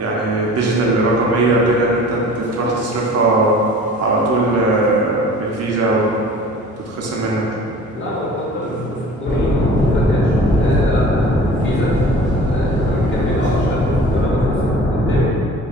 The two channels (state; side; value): normal; both; correlation 0.44